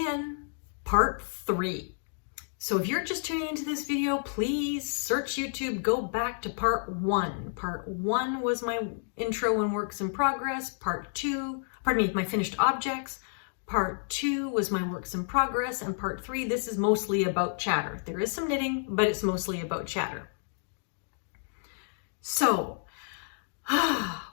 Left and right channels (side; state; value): right; silent; digital silence